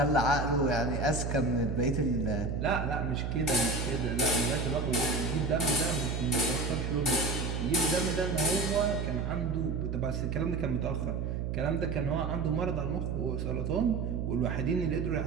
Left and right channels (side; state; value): right; noise; hum, 2 dB below the sound